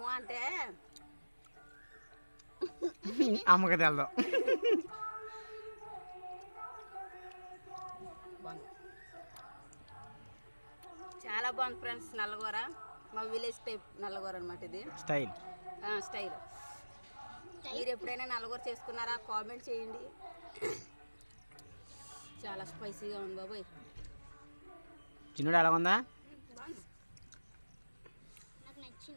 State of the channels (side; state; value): both; inverted; correlation -1.00